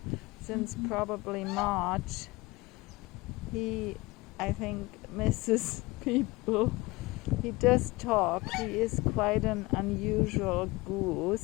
since probably March, he, I think, misses people. He does talk. He is quite an unusual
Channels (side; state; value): right; quieter; 22.3 dB